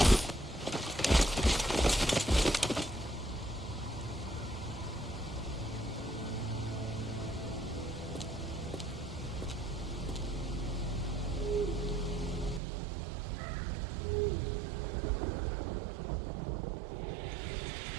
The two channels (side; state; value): left; drops out; at 12.6 s